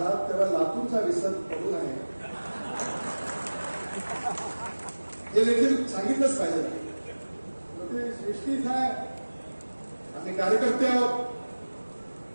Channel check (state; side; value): inverted; both; correlation -1.00